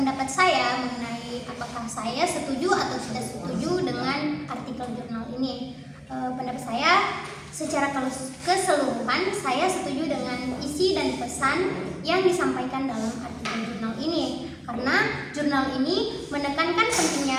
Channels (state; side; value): identical; both; correlation 1.00